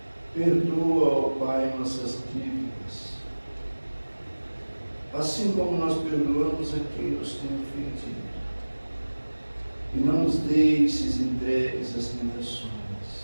Perdoa, ó Pai, nossas dívidas, assim como nós perdoamos a quem nos tem ofendido. E não nos deixes entregues às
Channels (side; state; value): both; inverted; correlation -1.00